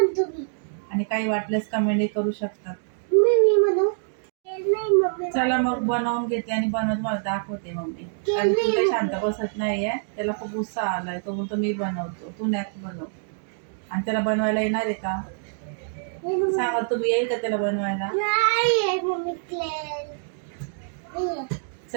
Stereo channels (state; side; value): silent; left; digital silence